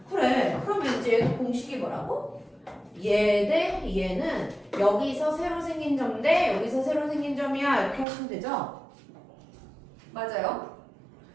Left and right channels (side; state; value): left; drops out; at 8.1 s